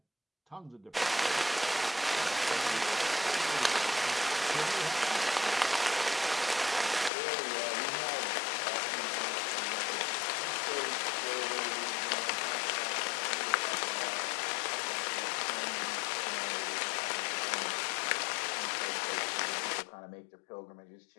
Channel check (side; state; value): right; drops out; at 7.1 s